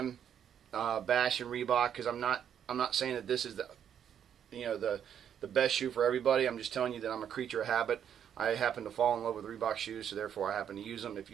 bashing Reebok, because I'm not saying that this is the best shoe for everybody. I'm just telling you that I'm a creature of habit. I happen to fall in love with Reebok shoes, so therefore I happen to use them. If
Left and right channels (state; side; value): quieter; left; 9.0 dB